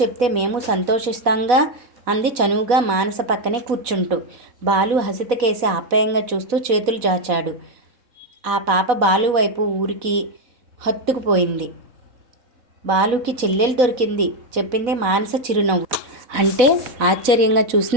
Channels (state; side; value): late; left; 4.1 ms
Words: చెప్తే మేము సంతోషిస్తాంగా అంది చనువుగా మానస పక్కనే కూర్చుంటూ. బాలు హసితకేసి ఆప్యాయంగా చూస్తూ చేతులు చాచాడు. ఆ పాప బాలు వైపు ఊరికి హత్తుకుపోయింది. బాలుకి చెల్లెలు దొరికింది చెప్పింది మానస చిరునవ్వు. అంటే ఆశ్చర్యంగా